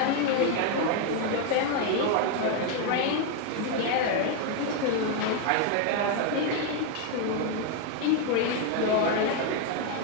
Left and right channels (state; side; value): different; both; correlation 0.01